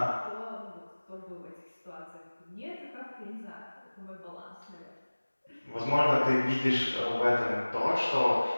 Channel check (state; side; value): inverted; both; correlation -1.00